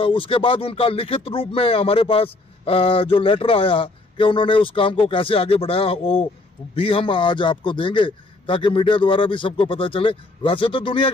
बाद उनका लिखित रूप में हमारे पास जो लेटर आया कि उन्होंने उस काम को कैसे आगे बढ़ाया, वो भी हम आज आपको देंगे ताकि मीडिया द्वारा भी सबको पता चले। वैसे तो दुनिया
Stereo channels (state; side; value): quieter; right; 3.1 dB